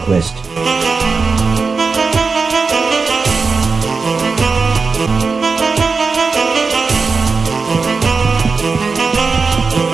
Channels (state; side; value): quieter; left; 4.6 dB